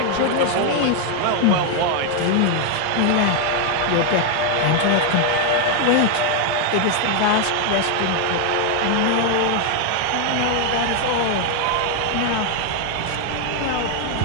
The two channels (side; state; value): both; different; correlation 0.01